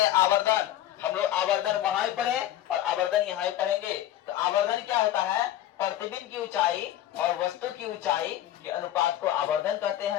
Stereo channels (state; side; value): quieter; right; 12.7 dB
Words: आवर्धन। हम लोग आवर्धन वहां ही पढ़े और आवर्धन यहाँ ही पढ़ेंगे। तो आवर्धन क्या होता है, प्रतिबिंब की ऊंचाई और वस्तु की ऊंचाई के अनुपात को आवर्धन कहते